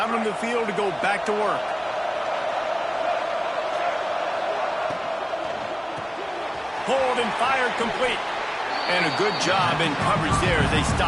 on the field to go back to work. Hold and fire complete. And a good job in coverage there as they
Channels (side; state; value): both; identical; correlation 1.00